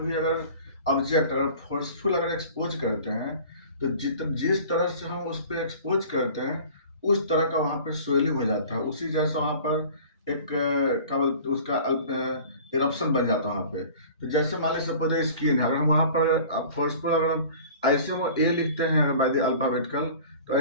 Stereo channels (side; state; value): both; inverted; correlation -0.44